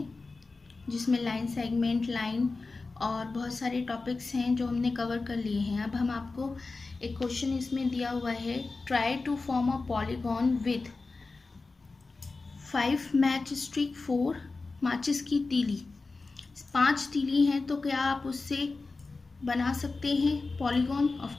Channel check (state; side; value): quieter; right; 3.8 dB